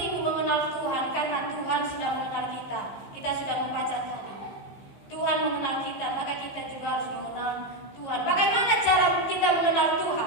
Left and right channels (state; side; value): late; right; 15 ms